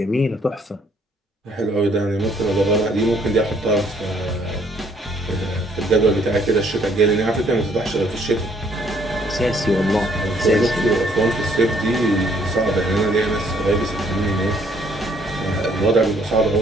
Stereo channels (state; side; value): normal; both; correlation 0.65